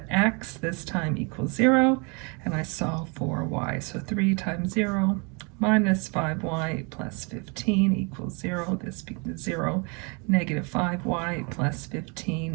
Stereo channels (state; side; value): quieter; left; 32.6 dB